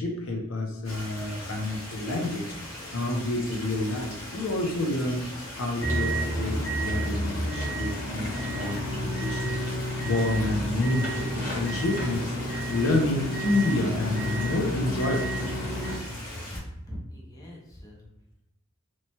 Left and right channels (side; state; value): both; normal; correlation 0.60